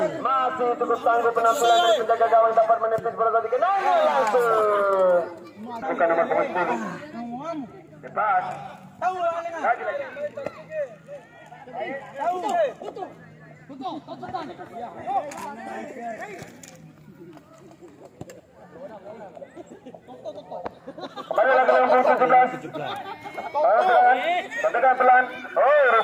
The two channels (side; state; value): both; identical; correlation 1.00